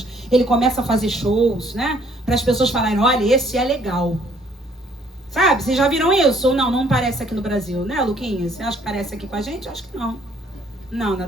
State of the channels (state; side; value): normal; both; correlation 0.62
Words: ele começa a fazer shows, né? Para as pessoas falarem, olha, esse é legal. Sabe, vocês já viram isso? Ou não parece aqui no Brasil, né, Luquinha? Você acha que parece aqui com a gente? Acho que não. Não,